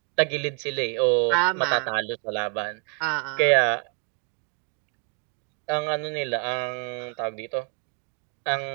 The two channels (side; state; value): left; quieter; 36.6 dB